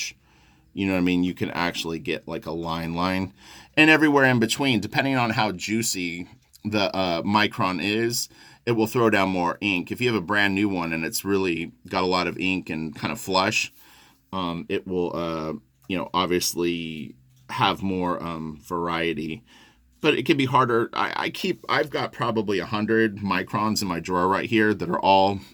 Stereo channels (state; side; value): identical; both; correlation 1.00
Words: you know what I mean? You can actually get like a line. And everywhere in between, depending on how juicy the micron is, it will throw down more ink. If you have a brand new one and it's really got a lot of ink and kind of flush, it will, you know, obviously have more variety. But it can be harder. I've got probably 100 microns in my drawer right here that are all